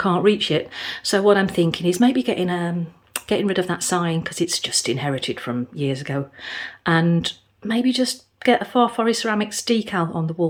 reach it. So what I'm thinking is maybe getting rid of that sign, because it's just inherited from years ago, and maybe just get a Far Forest Ceramics decal on the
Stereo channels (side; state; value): both; identical; correlation 1.00